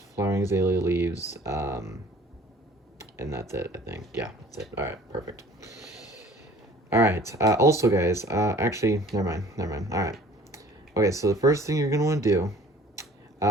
flowering azalea leaves, and that's it, I think. Yeah, that's it. All right, perfect. All right, also guys, actually, never mind. All right. Okay, so the first thing you're gonna want to do,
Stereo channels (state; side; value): normal; both; correlation 0.51